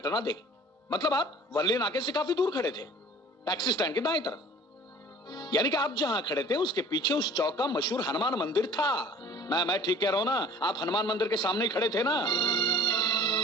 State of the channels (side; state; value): both; normal; correlation 0.47